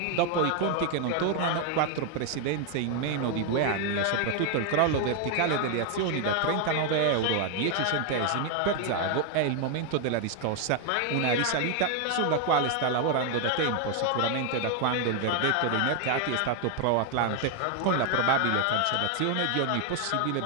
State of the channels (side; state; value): both; different; correlation 0.00